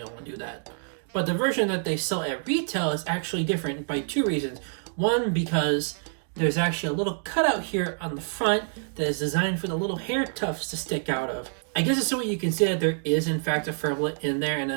want to do that. But the version that they sell at retail is actually different by two reasons. One, because there's actually a little cutout here on the front that is designed for the little hair tufts to stick out of. I guess it's so you can see that there is in fact a Furblet in there, and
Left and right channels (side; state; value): left; silent; digital silence